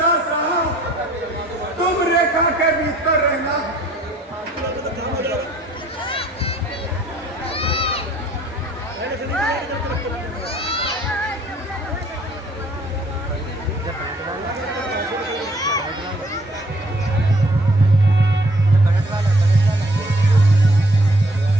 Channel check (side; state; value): both; normal; correlation 0.61